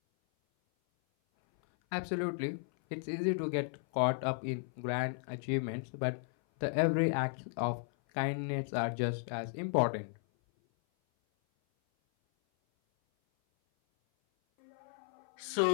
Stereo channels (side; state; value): right; silent; 55 dB below the other